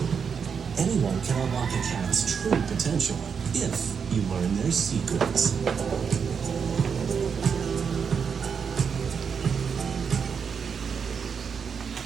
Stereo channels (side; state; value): left; quieter; 6.5 dB